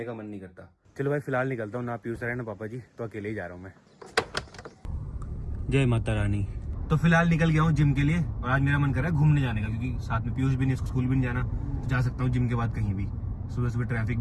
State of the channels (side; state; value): both; identical; correlation 1.00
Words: का मन नहीं करता। चलो भाई फिलहाल निकलता हूँ, ना पीयूष सर है ना पापा जी, तो अकेले ही जा रहा हूँ मैं। जय माता रानी। तो फिलहाल निकल गया हूँ जिम के लिए और आज मेरा मन कर रहा है घूमने जाने का, क्योंकि साथ में पीयूष भी नहीं, स्कूल भी नहीं जाना, तो जा सकता हूँ जिम के बाद कहीं भी। सुबह सुबह ट्रैफिक